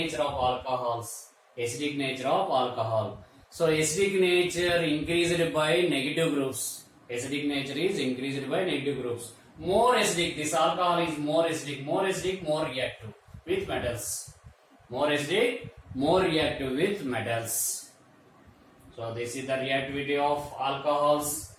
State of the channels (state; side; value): identical; both; correlation 1.00